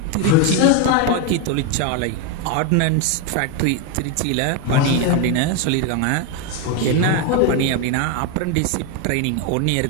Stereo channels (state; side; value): different; both; correlation 0.02